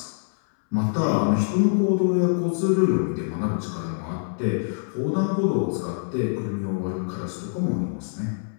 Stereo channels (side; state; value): right; silent; 62 dB below the other